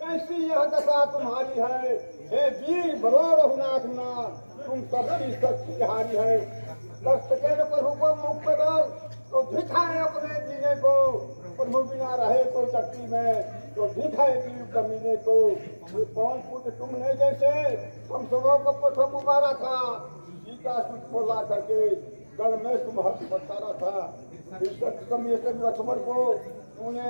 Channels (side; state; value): both; inverted; correlation -1.00